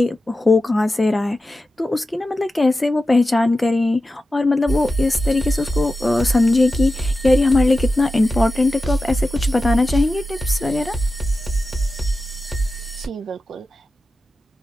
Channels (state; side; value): normal; both; correlation 0.92